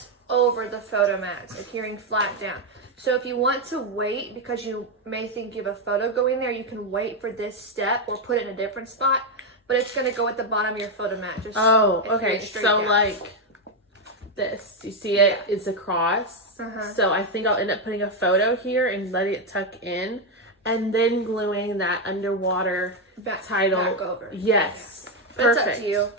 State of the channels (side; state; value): both; normal; correlation 0.04